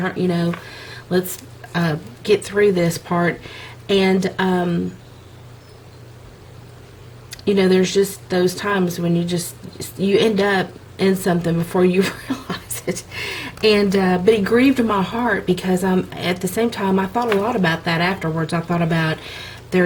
let's get through this part. And you know, there's just those times when you end up in something before you realize it. And but it grieved my heart, because at the same time, I thought a lot about that afterwards. I thought about,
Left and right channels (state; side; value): identical; both; correlation 1.00